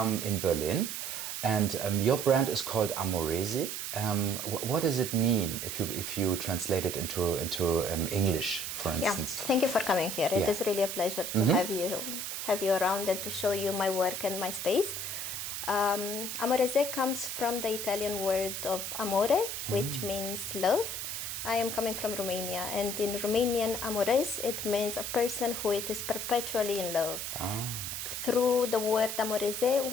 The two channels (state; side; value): noise; right; hiss, 4 dB below the sound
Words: in Berlin. And your brand is called Amoreze. What does it mean if you translate it into English, for instance? Yeah, thank you for coming here. It is really a pleasure to have you around and to show you my work and my space. Amoreze comes from the Italian word of amore, which means love. I am coming from Romania, and in Romanian, amores, it means a person who is perpetually in love. Through the word Amoreze,